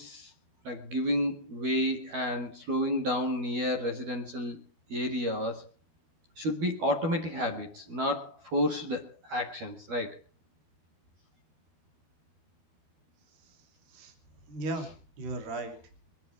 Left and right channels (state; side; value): late; left; 12 ms